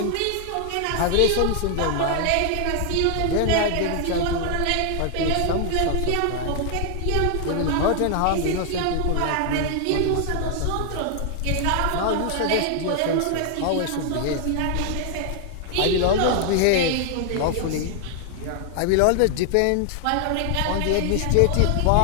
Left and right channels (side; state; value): both; different; correlation 0.00